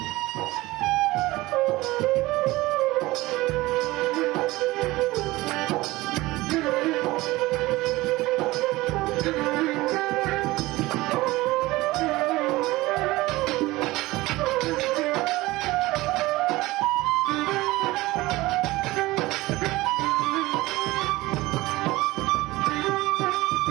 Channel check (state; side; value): quieter; left; 19.5 dB